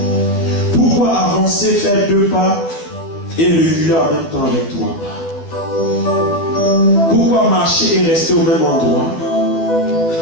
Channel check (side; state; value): right; late; 12 ms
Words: Pourquoi avancer, faire 2 pas et reculer en même temps avec toi? Pourquoi marcher et rester au même endroit?